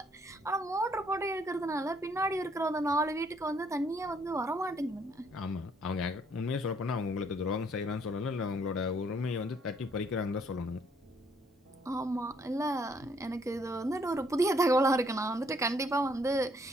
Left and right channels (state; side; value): normal; both; correlation 0.67